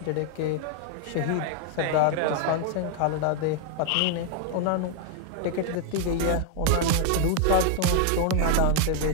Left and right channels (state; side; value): different; both; correlation 0.00